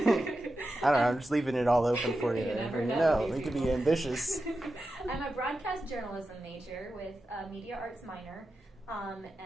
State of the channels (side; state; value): both; normal; correlation 0.91